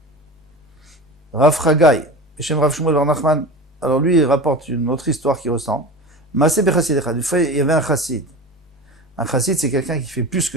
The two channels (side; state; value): both; normal; correlation 0.31